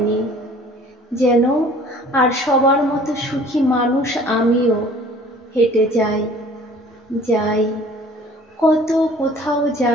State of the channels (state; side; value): normal; both; correlation 0.51